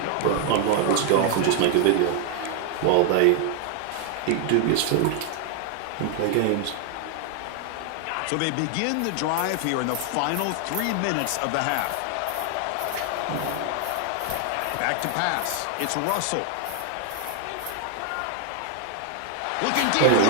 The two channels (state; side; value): different; both; correlation 0.00